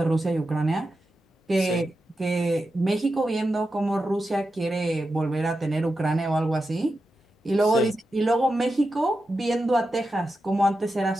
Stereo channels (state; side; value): normal; both; correlation 0.90